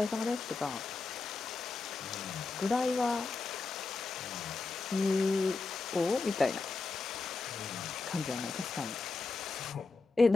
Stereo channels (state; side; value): quieter; right; 4.0 dB